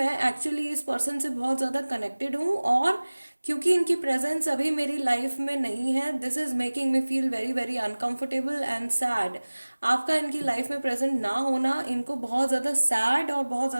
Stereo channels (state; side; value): inverted; both; correlation -1.00